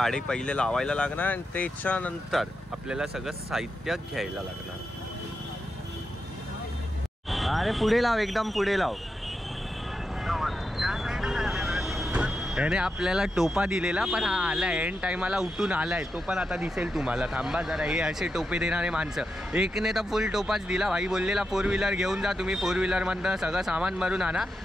पहिले लावायला लागणार आणि त्याच्यानंतर आपल्याला सगळं साहित्य घ्यायला लागणार. अरे पुढे लाव, एकदम पुढे लाव. याने आपल्याला टोपा दिलेला, पण हा आलाय एंड टाइमाला उठून आलाय. तो पण आता दिसेल तुम्हाला. थांबा जरा. हे असे टोपे देणारे माणसं, एकने तर फुल टोपाच दिला. भाई बोललेला 4 व्हीलर घेऊन जा तुम्ही, 4 व्हीलरमधनं सगळं सामान भरून आणा.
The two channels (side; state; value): both; normal; correlation 0.87